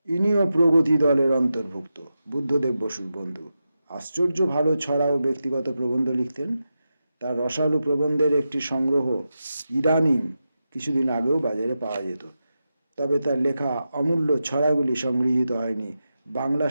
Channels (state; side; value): inverted; both; correlation -0.90